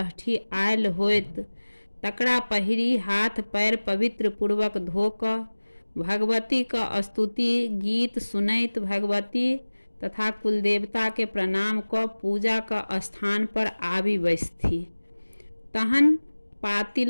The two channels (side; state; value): both; inverted; correlation -1.00